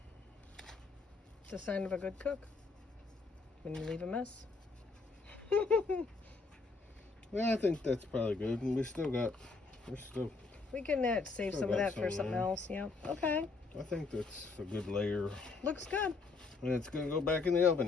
It's a sign of a good cook when you leave a mess. Yeah, I think that's probably good. And we're still We can save Still some of got that for some something there. else. Yeah. Okay. I think that's a good layer. Looks good. And it's gonna go back in the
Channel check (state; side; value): quieter; right; 4.1 dB